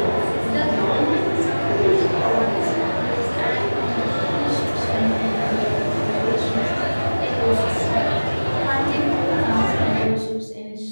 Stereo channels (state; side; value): inverted; both; correlation -1.00